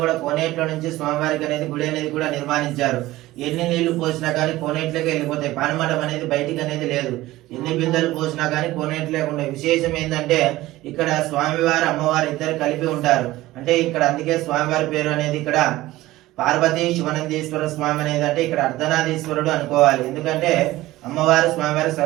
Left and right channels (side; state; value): left; quieter; 17.2 dB